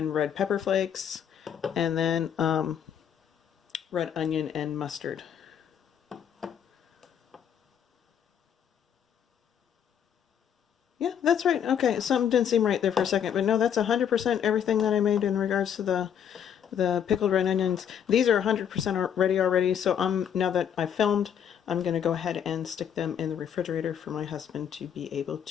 red pepper flakes, and then red onion and mustard. Yeah, that's right. Okay, something didn't seem right there for a second, but no, that's 100% everything that I made in regards to the pickled red onions. These are 100% ready already, so now that I've filmed, I'm going to go ahead and stick them in the refrigerator for my husband to be able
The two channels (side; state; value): right; quieter; 8.7 dB